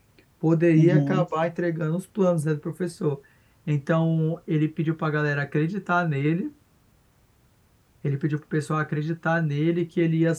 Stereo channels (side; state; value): both; identical; correlation 1.00